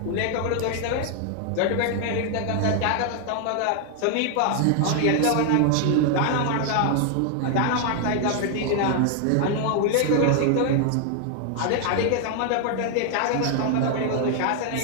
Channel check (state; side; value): different; both; correlation 0.00